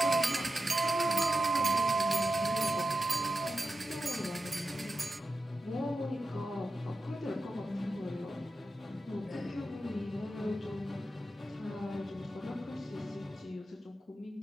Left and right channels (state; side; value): normal; both; correlation 0.90